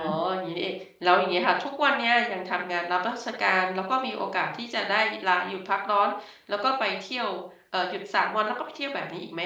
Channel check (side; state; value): both; identical; correlation 1.00